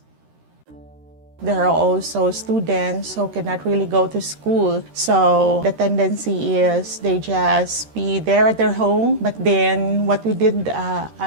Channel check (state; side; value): late; left; 13 ms